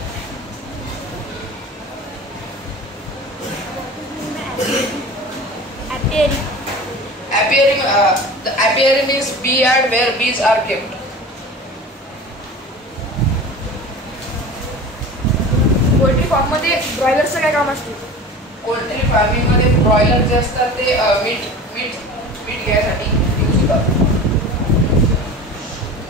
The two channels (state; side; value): normal; both; correlation 0.36